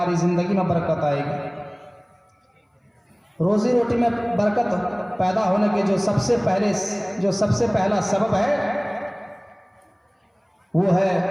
ज़िंदगी में बरकत आएगी। रोज़ी रोटी में बरकत पैदा होने के जो सबसे पहला सबब है वो है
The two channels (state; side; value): identical; both; correlation 1.00